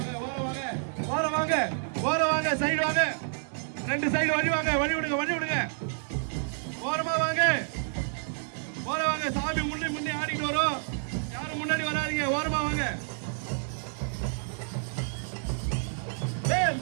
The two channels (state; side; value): silent; left; digital silence